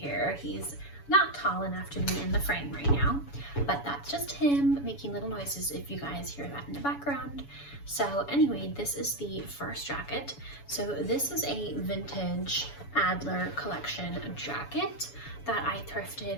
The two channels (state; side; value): late; right; 7.1 ms